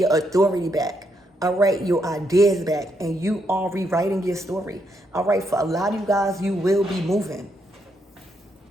authority back. All right. Your ideas back, and you are rewriting your story. All right. For a lot of you guys, you will be moving.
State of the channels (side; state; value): both; normal; correlation 0.78